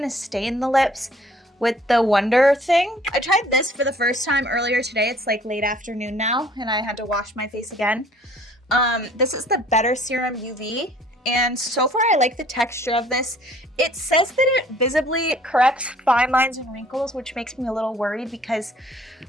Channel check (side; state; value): both; normal; correlation 0.56